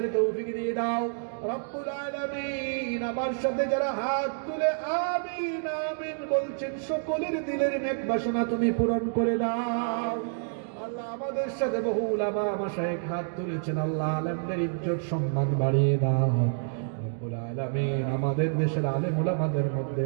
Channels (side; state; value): left; silent; digital silence